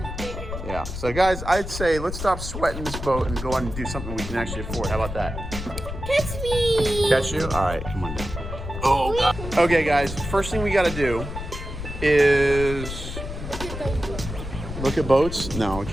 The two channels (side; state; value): left; noise; rumble, 7 dB below the sound